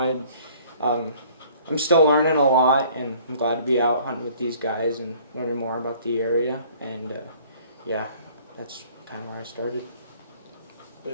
I'm still learning a lot, and I'm glad to be out hunting with these guys and learning more about the area. And yeah, that's kind of where I started.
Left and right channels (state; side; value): inverted; both; correlation -0.54